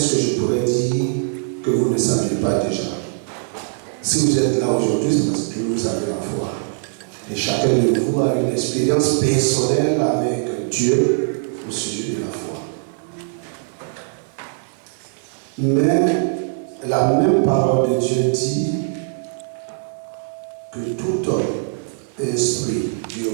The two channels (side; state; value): left; silent; 58 dB below the other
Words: que je pourrais dire que vous ne saviez pas déjà? Si vous êtes là aujourd'hui, c'est parce que vous avez la foi. Et chacun de vous a une expérience personnelle avec Dieu au sujet de la foi. Mais la même parole de Dieu dit que tout homme instruit du